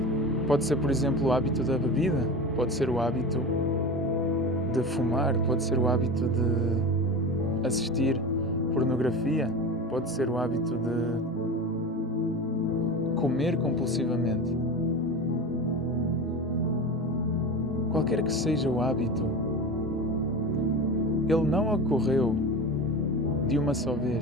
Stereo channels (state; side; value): normal; both; correlation 0.28